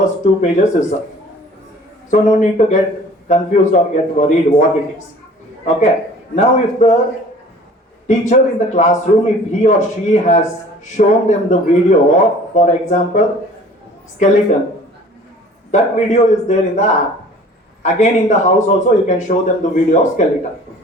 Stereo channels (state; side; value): normal; both; correlation 0.48